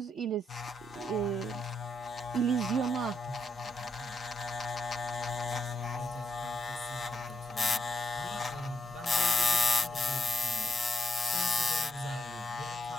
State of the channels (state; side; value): normal; both; correlation 0.77